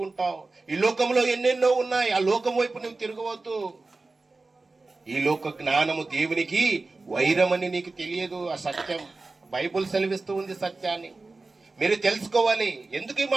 ఉంటావు. ఈ లోకంలో ఎన్నెన్నో ఉన్నాయి, ఆ లోకం వైపు నువ్వు తిరగవద్దు. ఈ లోక జ్ఞానము దేవునికి వైరమని నీకు తెలియదు. ఆ సత్యం బైబుల్ సెలవిస్తూ ఉంది. సత్యాన్ని మీరు తెలుసుకోవాలి. ఎందుకు ఈ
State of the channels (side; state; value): left; quieter; 3.5 dB